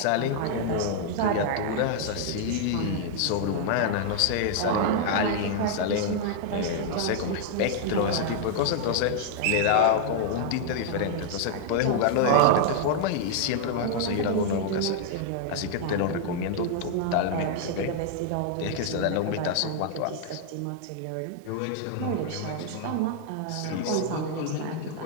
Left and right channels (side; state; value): both; different; correlation -0.01